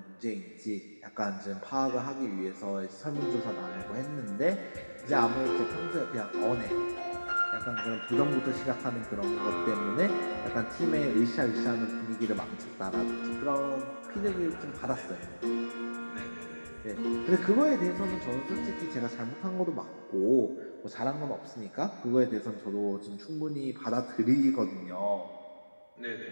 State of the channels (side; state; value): both; inverted; correlation -1.00